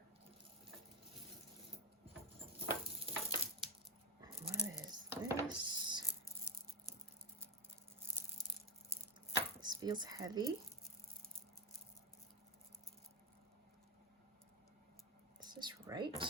What is this? This feels heavy.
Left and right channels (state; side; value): normal; both; correlation 0.12